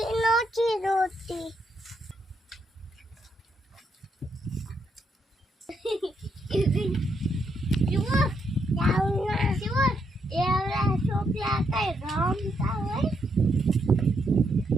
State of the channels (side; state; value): both; normal; correlation 0.77